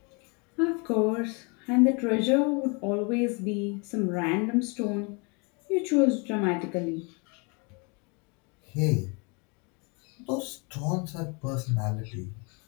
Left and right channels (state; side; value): quieter; right; 32.2 dB